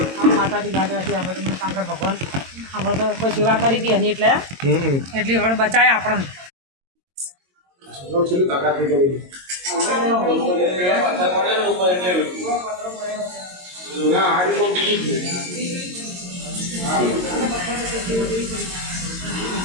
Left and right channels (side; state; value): left; late; 22 ms